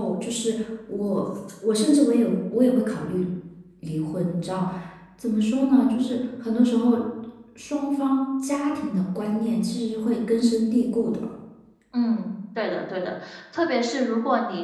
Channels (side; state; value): both; identical; correlation 1.00